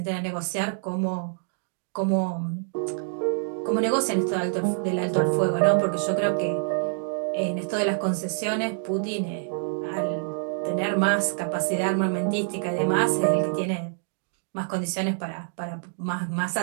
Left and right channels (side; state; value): left; silent; digital silence